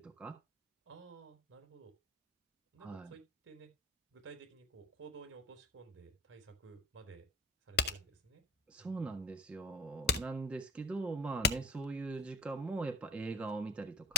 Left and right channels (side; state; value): both; normal; correlation 0.38